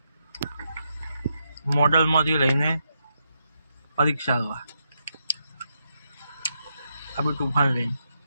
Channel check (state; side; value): inverted; both; correlation -0.82